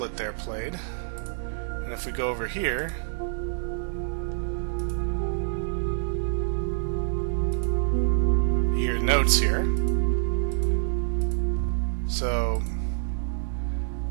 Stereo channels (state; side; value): silent; left; digital silence